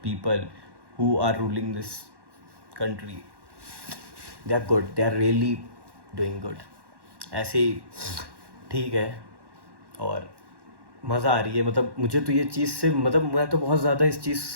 people who are ruling this country, they are good, they are really doing good. ऐसे ही ठीक है। और मज़ा आ रही है, मतलब मुझे तो ये चीज़ से, मतलब मैं तो बहुत ज़्यादा इस चीज़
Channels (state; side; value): late; left; 1.1 ms